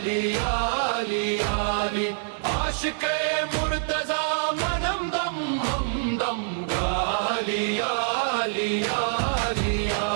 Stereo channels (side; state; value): left; silent; digital silence